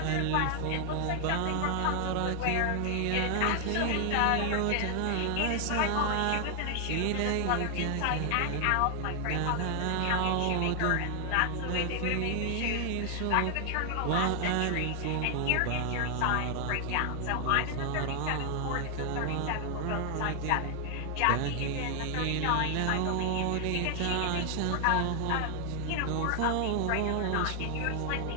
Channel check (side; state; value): both; different; correlation 0.00